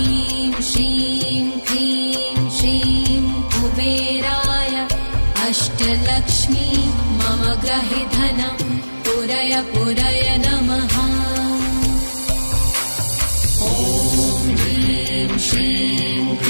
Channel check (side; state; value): both; inverted; correlation -1.00